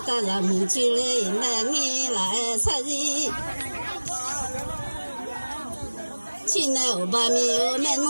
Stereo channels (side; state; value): both; inverted; correlation -1.00